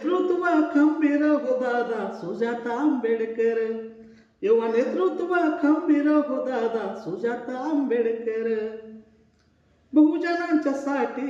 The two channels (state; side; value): identical; both; correlation 1.00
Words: खंबीर हो दादा सुजाता आंबेडकर, युवा नेतृत्व खंबीर हो दादा सुजाता आंबेडकर, बहुजनांच्या